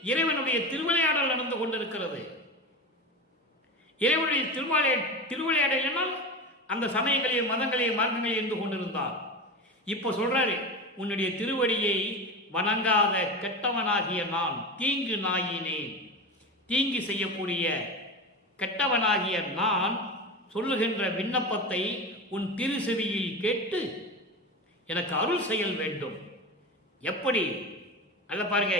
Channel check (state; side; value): normal; both; correlation 0.24